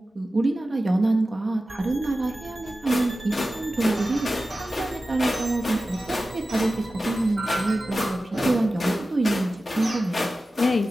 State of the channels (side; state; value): both; normal; correlation 0.94